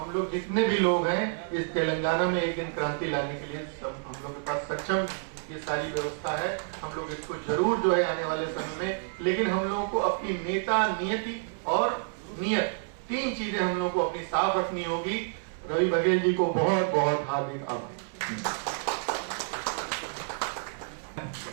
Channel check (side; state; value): left; silent; digital silence